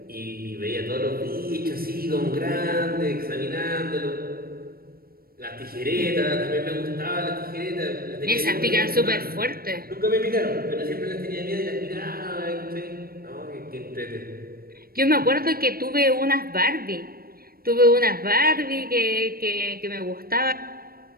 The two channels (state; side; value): late; left; 0.44 ms